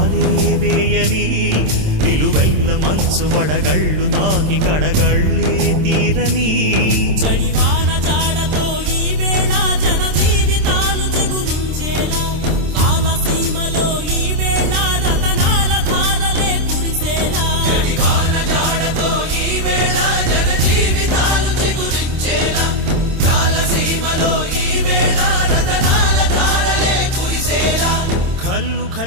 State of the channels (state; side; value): late; left; 27 ms